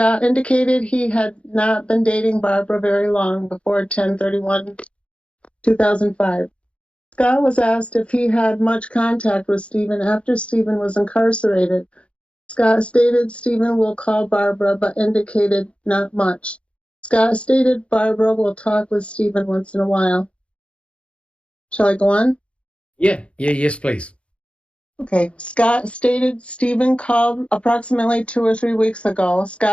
indicated he had not been dating Barbara very long before 10/31/2005. Scott was asked if he had much contact with Stephen after Stephen was incarcerated. Scott stated Stephen will call Barbara, but indicated not much. Scott stated Barbara will talk with Stephen once in a while. Shall I go on? Yes, please. Okay. Scott stated Stephen called approximately 2 or 3 weeks ago.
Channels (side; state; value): right; late; 0.060 ms